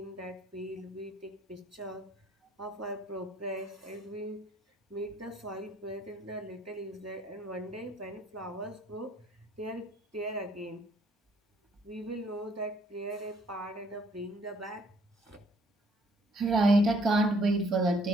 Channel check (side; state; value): both; normal; correlation 0.63